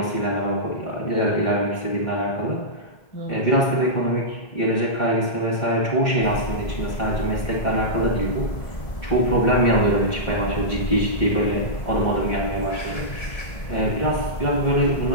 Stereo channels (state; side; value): late; right; 1.7 ms